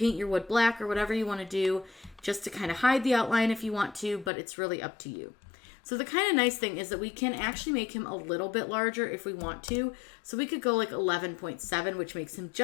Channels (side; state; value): right; drops out; at 4.3 s